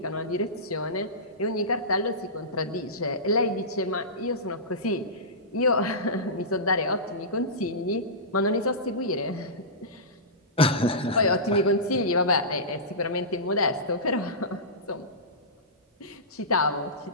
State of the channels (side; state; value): both; normal; correlation -0.19